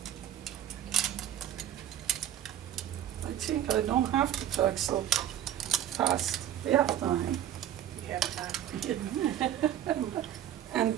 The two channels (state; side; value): quieter; left; 10.9 dB